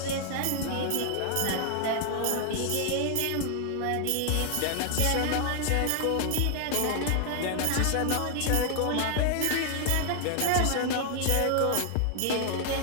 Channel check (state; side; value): different; both; correlation 0.00